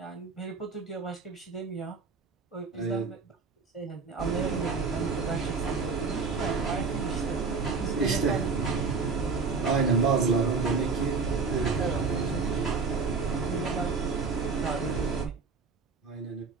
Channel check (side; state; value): left; quieter; 4.7 dB